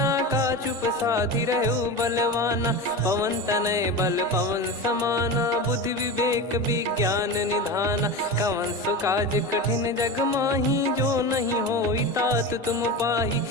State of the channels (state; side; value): normal; both; correlation 0.25